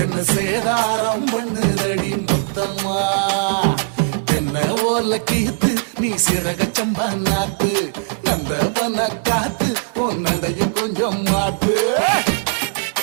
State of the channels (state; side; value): silent; left; digital silence